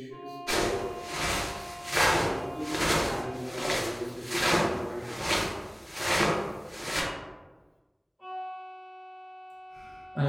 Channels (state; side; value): identical; both; correlation 1.00